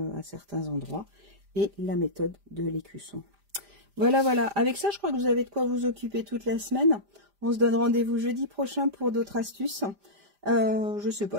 à certains endroits. Et la méthode de l'écusson. Voilà, voilà. Avec ça, je crois que vous avez de quoi vous occuper toute la semaine. On se donne rendez-vous jeudi prochain pour d'autres astuces. Je sais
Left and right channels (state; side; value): late; left; 5.0 ms